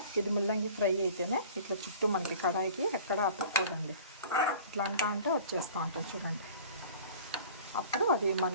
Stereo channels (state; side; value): inverted; both; correlation -0.45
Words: ఇది ముల్లంగి ఫ్రై అయితేనే ఇట్లా చుట్టూ మనకి కడాయికి ఎక్కడ అతుక్కోదండి. ఇట్లా అంటే వచ్చేస్తూ ఉంటుంది చూడండి. అప్పుడు అది